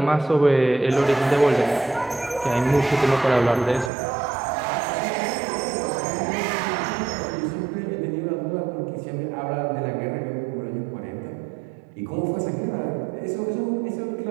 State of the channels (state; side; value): drops out; left; at 3.9 s